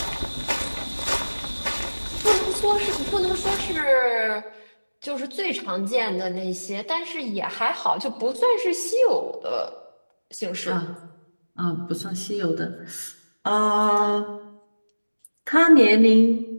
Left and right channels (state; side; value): inverted; both; correlation -1.00